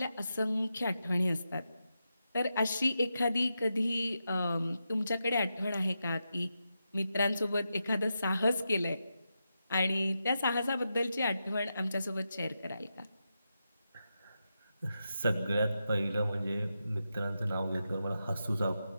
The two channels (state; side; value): inverted; both; correlation -0.88